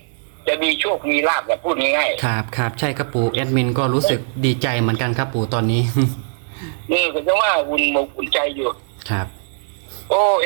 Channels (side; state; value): left; silent; digital silence